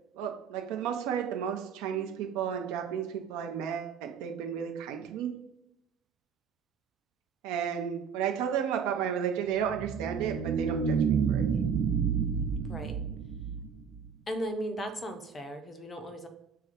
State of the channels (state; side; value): quieter; left; 6.7 dB